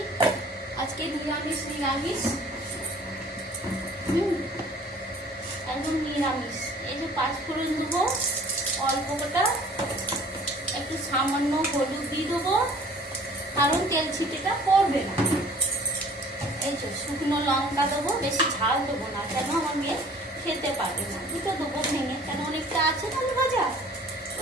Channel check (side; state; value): both; normal; correlation 0.51